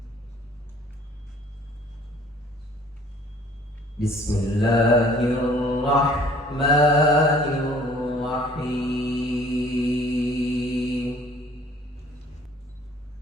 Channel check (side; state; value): both; normal; correlation 0.54